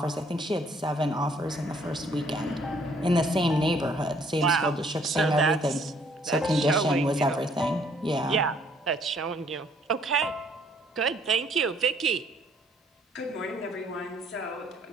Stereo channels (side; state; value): both; normal; correlation 0.63